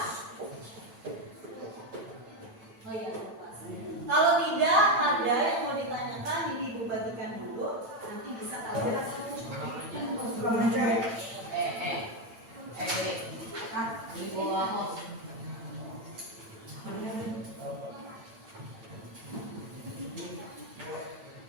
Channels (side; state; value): left; late; 8.9 ms